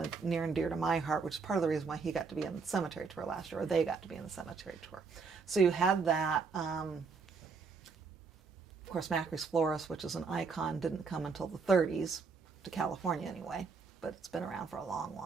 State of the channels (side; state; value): left; quieter; 5.0 dB